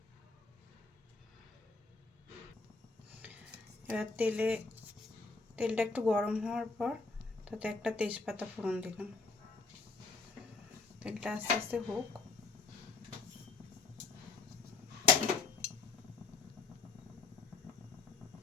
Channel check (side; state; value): right; quieter; 4.2 dB